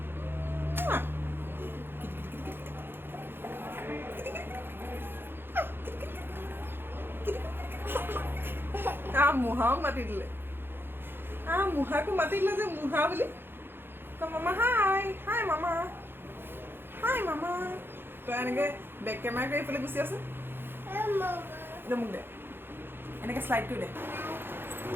মুহাও মাতি দিলে মুহাকো মাতি দিলে যে মুহা বুলি মামা হাই হাই মামা তই এনেকে বেক কেমেৰা কৰি এইফালে গুচি আছে মোক দে এনেকে শ্লাইড কৰি দে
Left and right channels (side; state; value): left; late; 0.10 ms